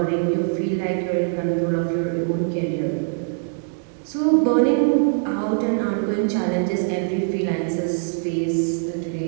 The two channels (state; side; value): silent; left; digital silence